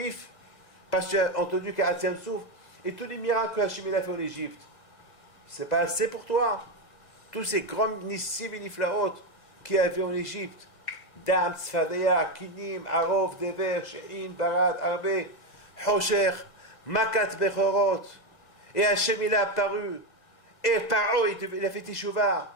Parce que tu as entendu qu'Atzem Souf et tous les miracles que Hachem a fait en Égypte. C'est pas assez pour toi? Tous ces grands nissim et niflaot qu'il y avait en Égypte. Dam, Tzfadeya, Kinim, Arov, Dever, She'in, Barad, Arbe, Hosher, Makat, Bechorot. Et Hachem il a apparu. Et Paro, il a fait Teshuvah.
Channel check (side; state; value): right; late; 1.7 ms